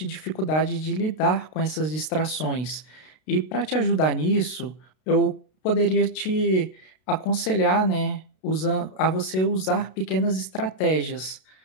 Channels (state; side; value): late; right; 32 ms